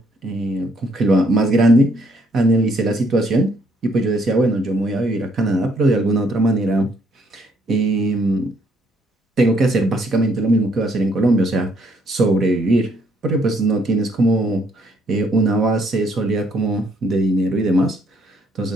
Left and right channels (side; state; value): both; normal; correlation 0.68